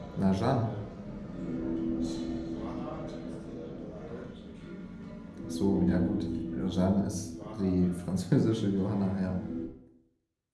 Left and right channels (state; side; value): identical; both; correlation 1.00